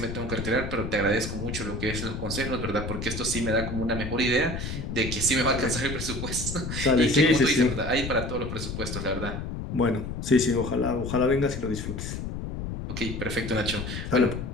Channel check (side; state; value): left; noise; rumble, 5 dB below the sound